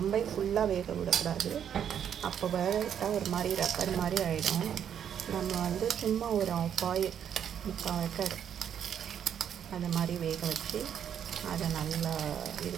ஃபுல்லாக வேக விடக்கூடாது. அப்போ வேக விட்டால் ஒரு மாதிரி ரப்பர் மாதிரி ஆகிடும். நம்ம வந்து சும்மா ஒரு பாயில் 3/4 ஏக்கர் அது மாதிரி வேக வச்சு அதை நல்லா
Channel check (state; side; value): quieter; left; 8.9 dB